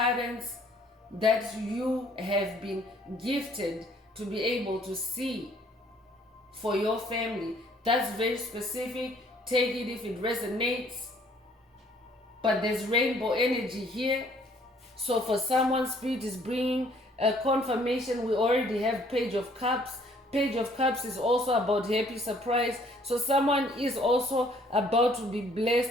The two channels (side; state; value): both; normal; correlation 0.61